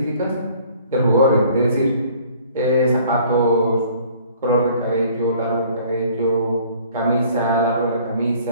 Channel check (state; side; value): inverted; both; correlation -0.55